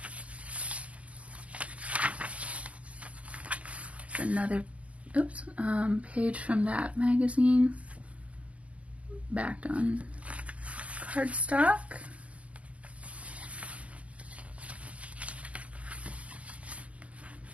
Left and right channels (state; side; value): late; left; 0.068 ms